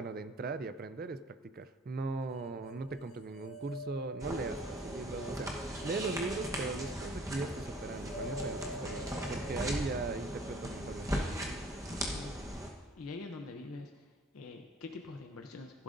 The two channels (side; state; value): both; normal; correlation 0.53